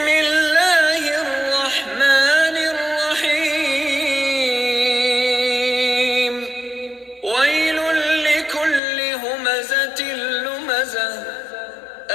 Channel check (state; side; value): drops out; right; at 8.8 s